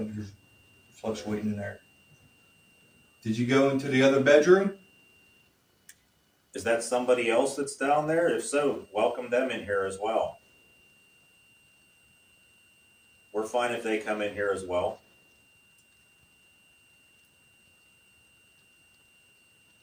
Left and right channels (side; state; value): both; identical; correlation 1.00